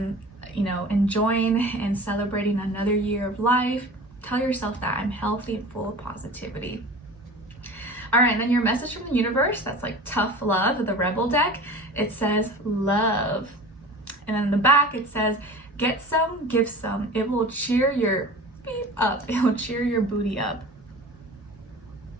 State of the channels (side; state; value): both; normal; correlation 0.38